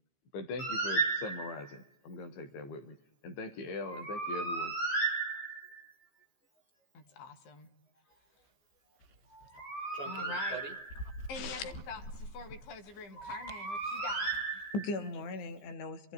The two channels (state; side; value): late; right; 15 ms